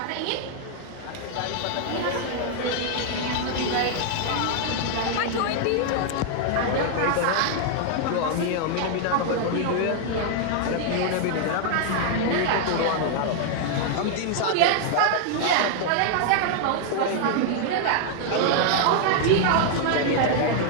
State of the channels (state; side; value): different; both; correlation 0.00